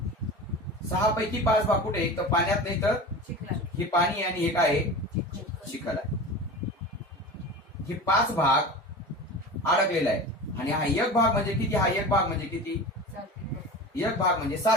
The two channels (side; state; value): both; normal; correlation 0.32